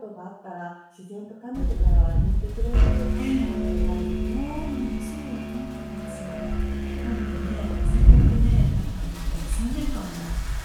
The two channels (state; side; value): identical; both; correlation 1.00